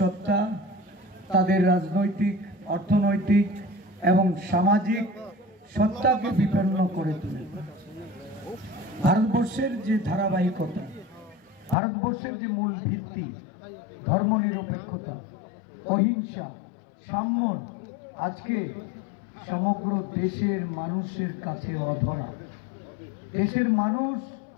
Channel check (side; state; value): right; drops out; at 11.8 s